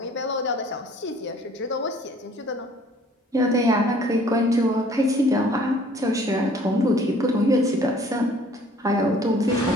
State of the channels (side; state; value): both; normal; correlation 0.55